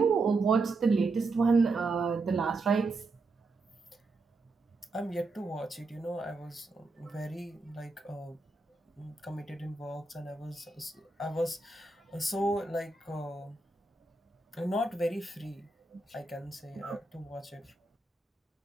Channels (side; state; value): left; quieter; 3.4 dB